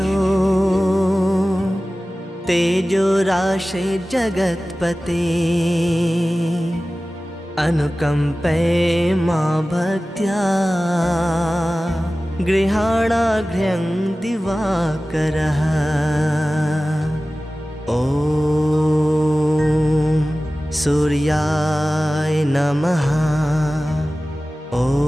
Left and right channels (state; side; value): normal; both; correlation 0.96